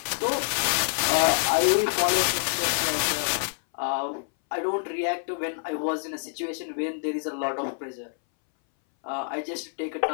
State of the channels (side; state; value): right; silent; 60 dB below the other